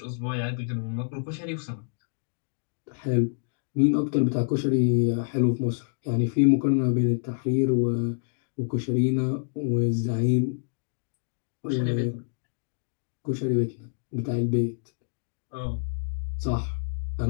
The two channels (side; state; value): right; silent; digital silence